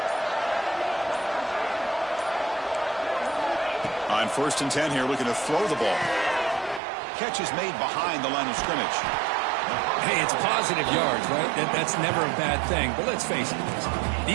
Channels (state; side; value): drops out; left; at 6.8 s